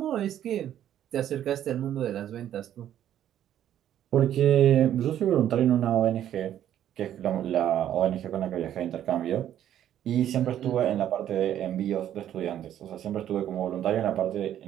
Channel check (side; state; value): left; quieter; 11.0 dB